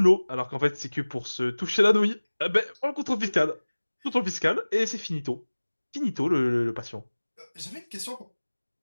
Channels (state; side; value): inverted; both; correlation -1.00